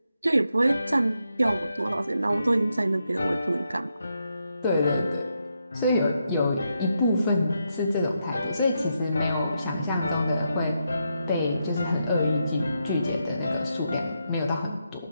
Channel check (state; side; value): inverted; both; correlation -0.83